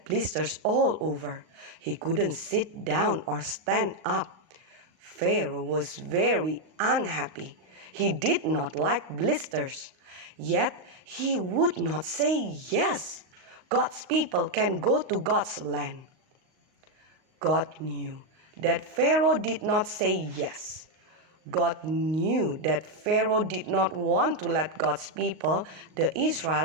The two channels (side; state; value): left; late; 38 ms